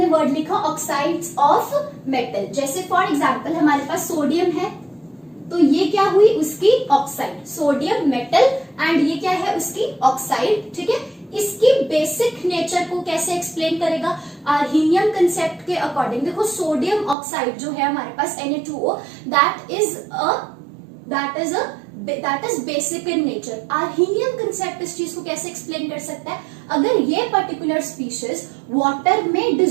वर्ड लिखा ऑक्साइड्स ऑफ मेटल। जैसे फॉर एग्जांपल हमारे पास सोडियम है, तो ये क्या हुई, उसकी ऑक्साइड, सोडियम मेटल एंड ये क्या है, उसकी ऑक्साइड, ठीक है। इसकी बेसिक नेचर को कैसे एक्सप्लेन करेगा, आर्हीनियम कंसेप्ट के अकॉर्डिंग। देखो सोडियम ऑक्साइड जो है हमारे पास Na2O, that is basic in nature. Arrhenius concept इस चीज को कैसे एक्सप्लेन कर सकता है, अगर ये पर्टिकुलर स्पीशीज वाटर में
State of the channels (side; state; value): left; drops out; at 17.2 s